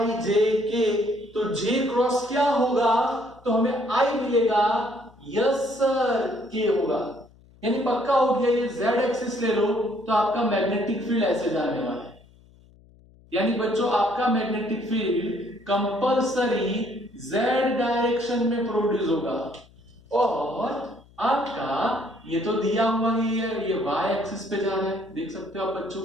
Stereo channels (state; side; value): noise; left; hum, 27 dB below the sound